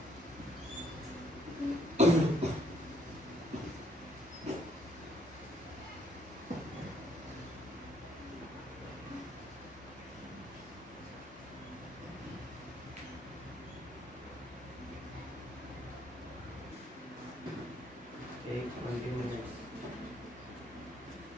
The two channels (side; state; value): both; normal; correlation 0.67